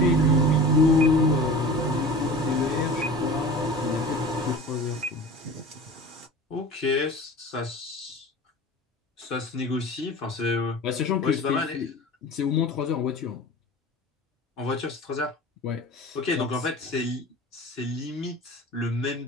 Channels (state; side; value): normal; both; correlation 0.37